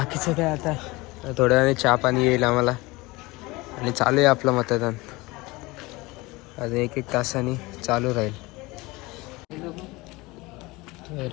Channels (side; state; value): right; quieter; 22.4 dB